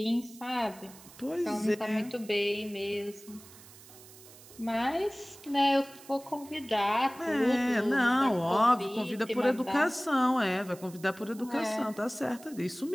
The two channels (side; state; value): right; noise; hiss, 20 dB below the sound